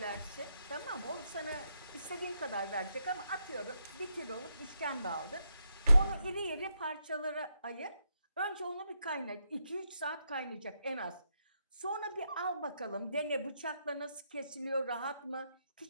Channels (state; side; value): inverted; both; correlation -0.80